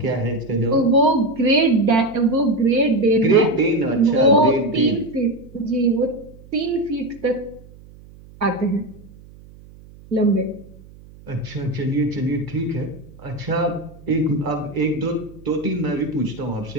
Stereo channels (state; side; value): noise; right; hum, 22 dB below the sound